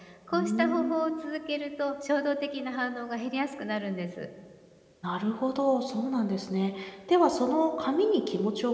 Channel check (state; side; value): identical; both; correlation 1.00